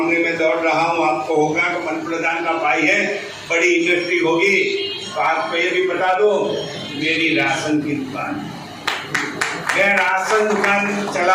में दौड़ रहा हूँ। आपको होगा कि मंत्री प्रधान का भाई है, बड़ी इंडस्ट्री होगी, तो आपको ये भी बता दो, मेरी राशन की दुकान, मैं राशन दुकान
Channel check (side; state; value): both; identical; correlation 1.00